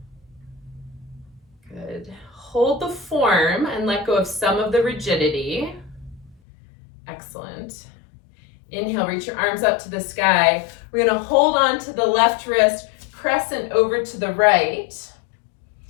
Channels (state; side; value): drops out; right; at 6.4 s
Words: Good. Hold the form and let go of some of the rigidity. Excellent. Inhale, reach your arms up to the sky. We're going to hold on to the left wrist, crescent over to the right.